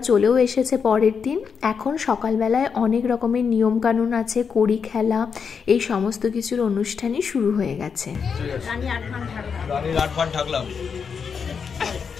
চলেও এসেছে পরের দিন। এখন সকালবেলায় অনেক রকমের নিয়মকানুন আছে, কড়ি খেলা, এই সমস্ত কিছুর অনুষ্ঠানই শুরু হয়ে গেছে।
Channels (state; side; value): quieter; right; 6.2 dB